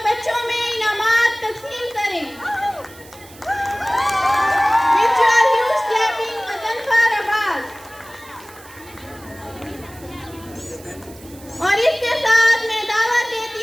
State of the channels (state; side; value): noise; right; hiss, 21 dB below the sound